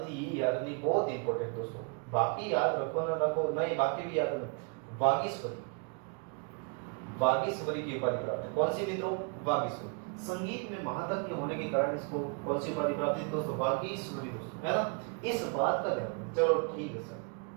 थी, ये याद रखनी बहुत इंपॉर्टेंट दोस्तों, बाकी याद रखो ना रखो, नहीं बाकी भी याद रखो। वागीश्वरी, वागीश्वरी की उपाधि प्राप्त है, कौन सी मित्रों, वागीश्वरी। संगीत में महादज्ञ होने के कारण इसको कौन सी उपाधि प्राप्त है दोस्तों, वागीश्वरी दोस्तों, है ना, इस बात का ध्यान। चलो ठीक है सर,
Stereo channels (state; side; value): quieter; left; 36.4 dB